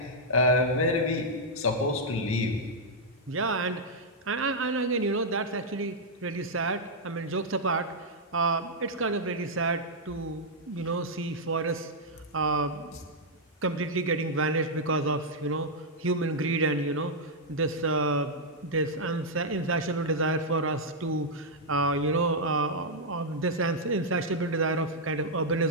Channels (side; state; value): both; normal; correlation -0.05